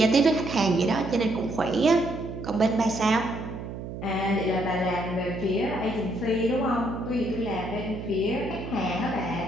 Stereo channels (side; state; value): right; noise; hum, 9 dB below the sound